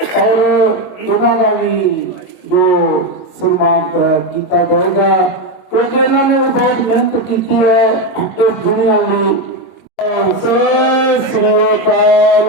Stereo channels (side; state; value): right; late; 22 ms